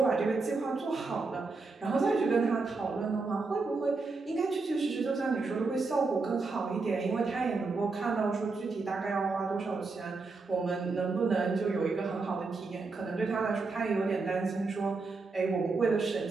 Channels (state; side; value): quieter; left; 4.0 dB